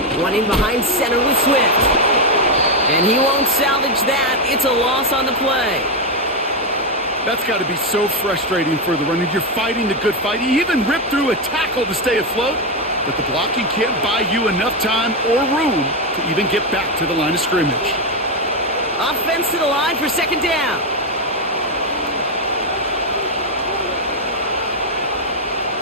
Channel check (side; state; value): both; normal; correlation 0.07